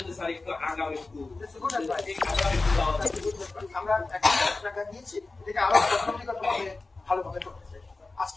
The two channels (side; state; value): right; quieter; 3.5 dB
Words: স্যার একটু আগামী একটু আমরা 1,00,000 টাকা দিয়েছি, এটাকে আরো ভালোভাবে করতে চাই।